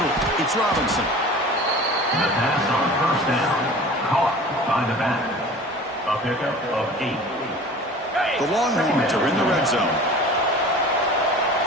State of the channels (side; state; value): both; normal; correlation 0.41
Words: it's Robinson. The pass on first down, caught by the back. A pickup of 8. The Longhorns are in the red zone.